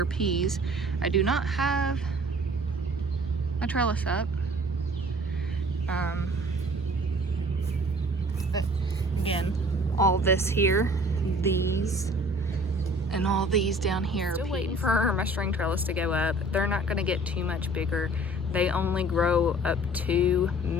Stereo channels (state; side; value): normal; both; correlation 0.51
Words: are peas. I do not have a trellis up. But again, all this here, these, and all these down here. Still waiting for my string trellis to go up. They're not gonna get too much bigger. They only grow up to